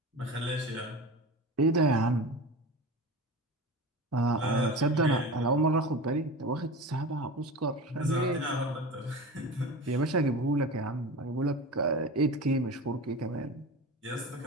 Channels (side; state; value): both; normal; correlation 0.30